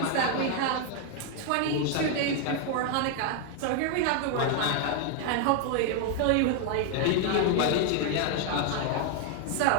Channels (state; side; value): different; both; correlation 0.00